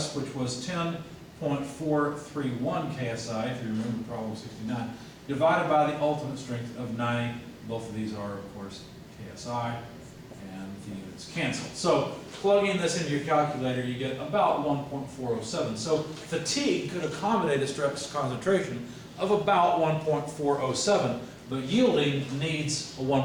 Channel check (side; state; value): both; identical; correlation 1.00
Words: which was 10.431 KSI, if you remember problem 69, divided by the ultimate strength of 90. Both of these are, of course, KSI, and the units cancel. So plugging this into your calculator, you get about 1.407. So fatigue could accommodate a stress concentration of about 1.407, but yielding needs a